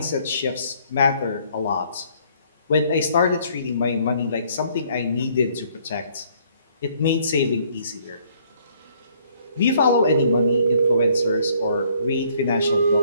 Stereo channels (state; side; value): inverted; both; correlation -0.63